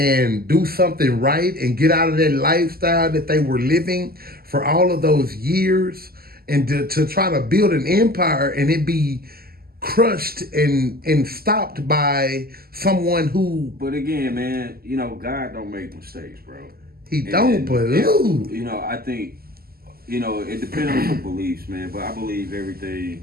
do something right and get out of that lifestyle that they were living for all of those years, and to try to build an empire and it be crushed and stopped by someone who. But again, man, you know, God don't make mistakes, bro. He don't, but you know, I think, you know, it depends on your beliefs, man. But I believe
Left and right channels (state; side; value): late; left; 0.44 ms